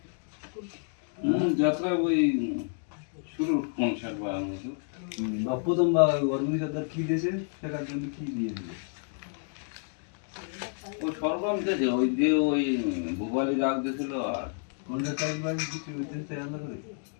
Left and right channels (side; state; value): right; silent; 55 dB below the other